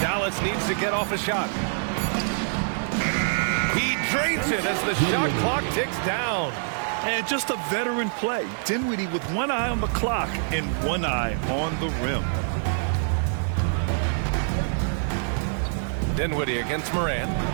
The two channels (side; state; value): left; silent; 60 dB below the other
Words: Dallas needs to get off a shot. He drains it as the shot clock ticks down. And just a veteran play. Dinwiddie with one eye on the clock and one eye on the rim. Dinwiddie against Morant.